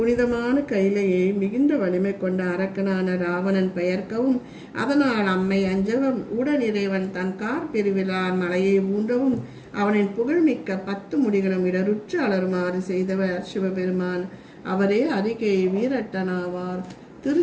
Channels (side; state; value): both; identical; correlation 1.00